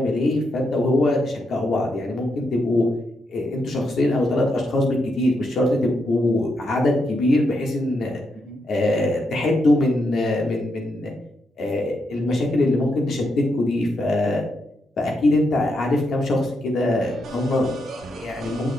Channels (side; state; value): both; normal; correlation 0.81